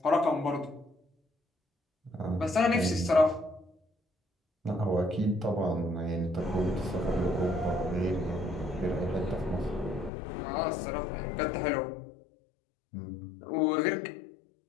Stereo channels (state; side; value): drops out; right; at 10.1 s